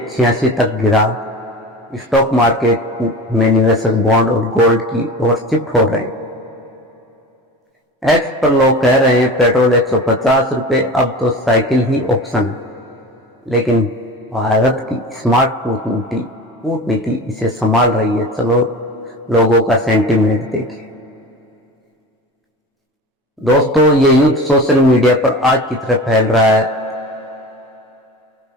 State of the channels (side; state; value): both; normal; correlation 0.33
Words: 86 तक गिरा। स्टॉक मार्केट में निवेशक बॉन्ड और गोल्ड की ओर शिफ्ट हो रहे हैं। एक्स पर लोग कह रहे हैं पेट्रोल 150 रुपये, अब तो साइकिल ही ऑप्शन है। लेकिन भारत की स्मार्ट कूटनीति इसे संभाल रही है। चलो लोगों का सेंटीमेंट देखें। दोस्तों, ये युद्ध सोशल मीडिया पर आग की तरह फैल रहा है।